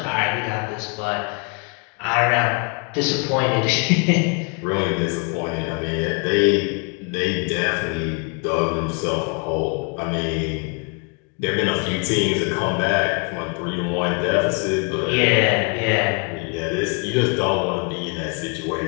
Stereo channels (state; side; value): quieter; right; 35.1 dB